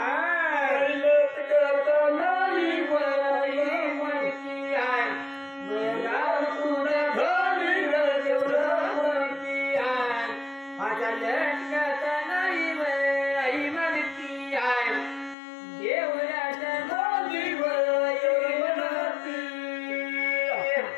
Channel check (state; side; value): drops out; right; at 15.4 s